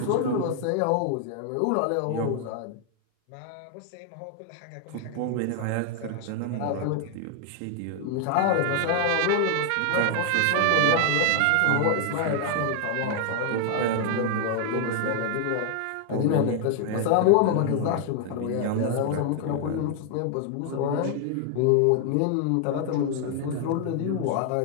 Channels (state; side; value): different; both; correlation 0.00